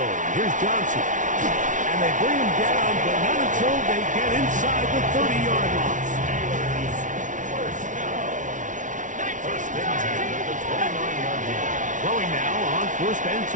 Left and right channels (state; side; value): late; left; 0.37 ms